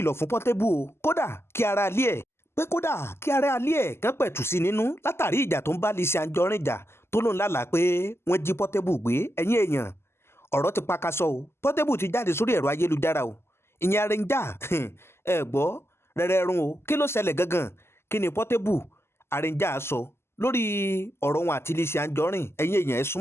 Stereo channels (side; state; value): right; late; 0.12 ms